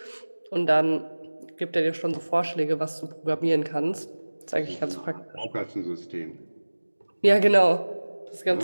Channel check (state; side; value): inverted; both; correlation -1.00